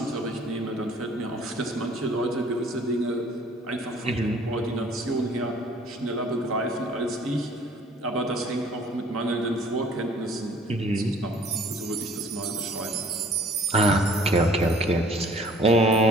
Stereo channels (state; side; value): normal; both; correlation 0.54